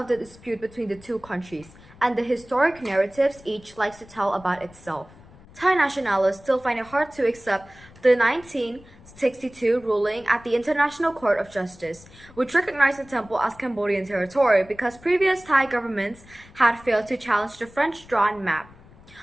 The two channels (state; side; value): noise; left; rumble, 23 dB below the sound